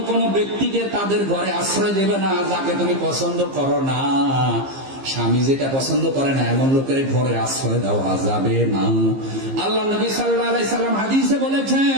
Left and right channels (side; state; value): left; late; 15 ms